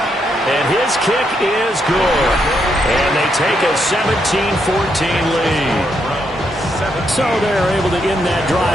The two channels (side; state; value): both; normal; correlation 0.78